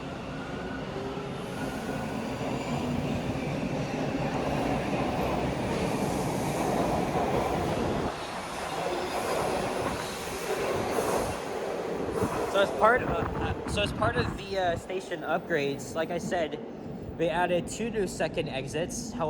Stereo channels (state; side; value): identical; both; correlation 1.00